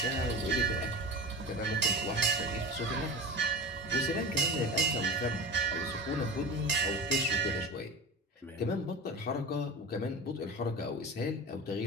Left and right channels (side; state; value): both; normal; correlation 0.31